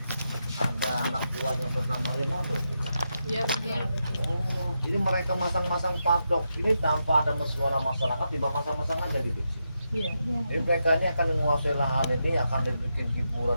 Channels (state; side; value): inverted; both; correlation -0.85